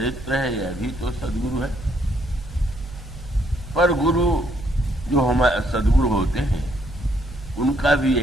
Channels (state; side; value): normal; both; correlation 0.70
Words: है, यह भी तो सद्गुरु है। पर गुरु जो हमारे सद्गुरु होते हैं उनका भी